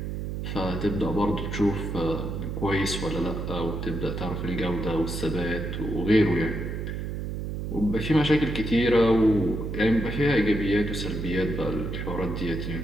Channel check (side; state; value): right; noise; hum, 4 dB below the sound